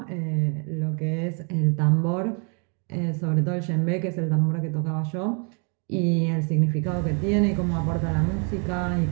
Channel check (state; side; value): quieter; left; 38.0 dB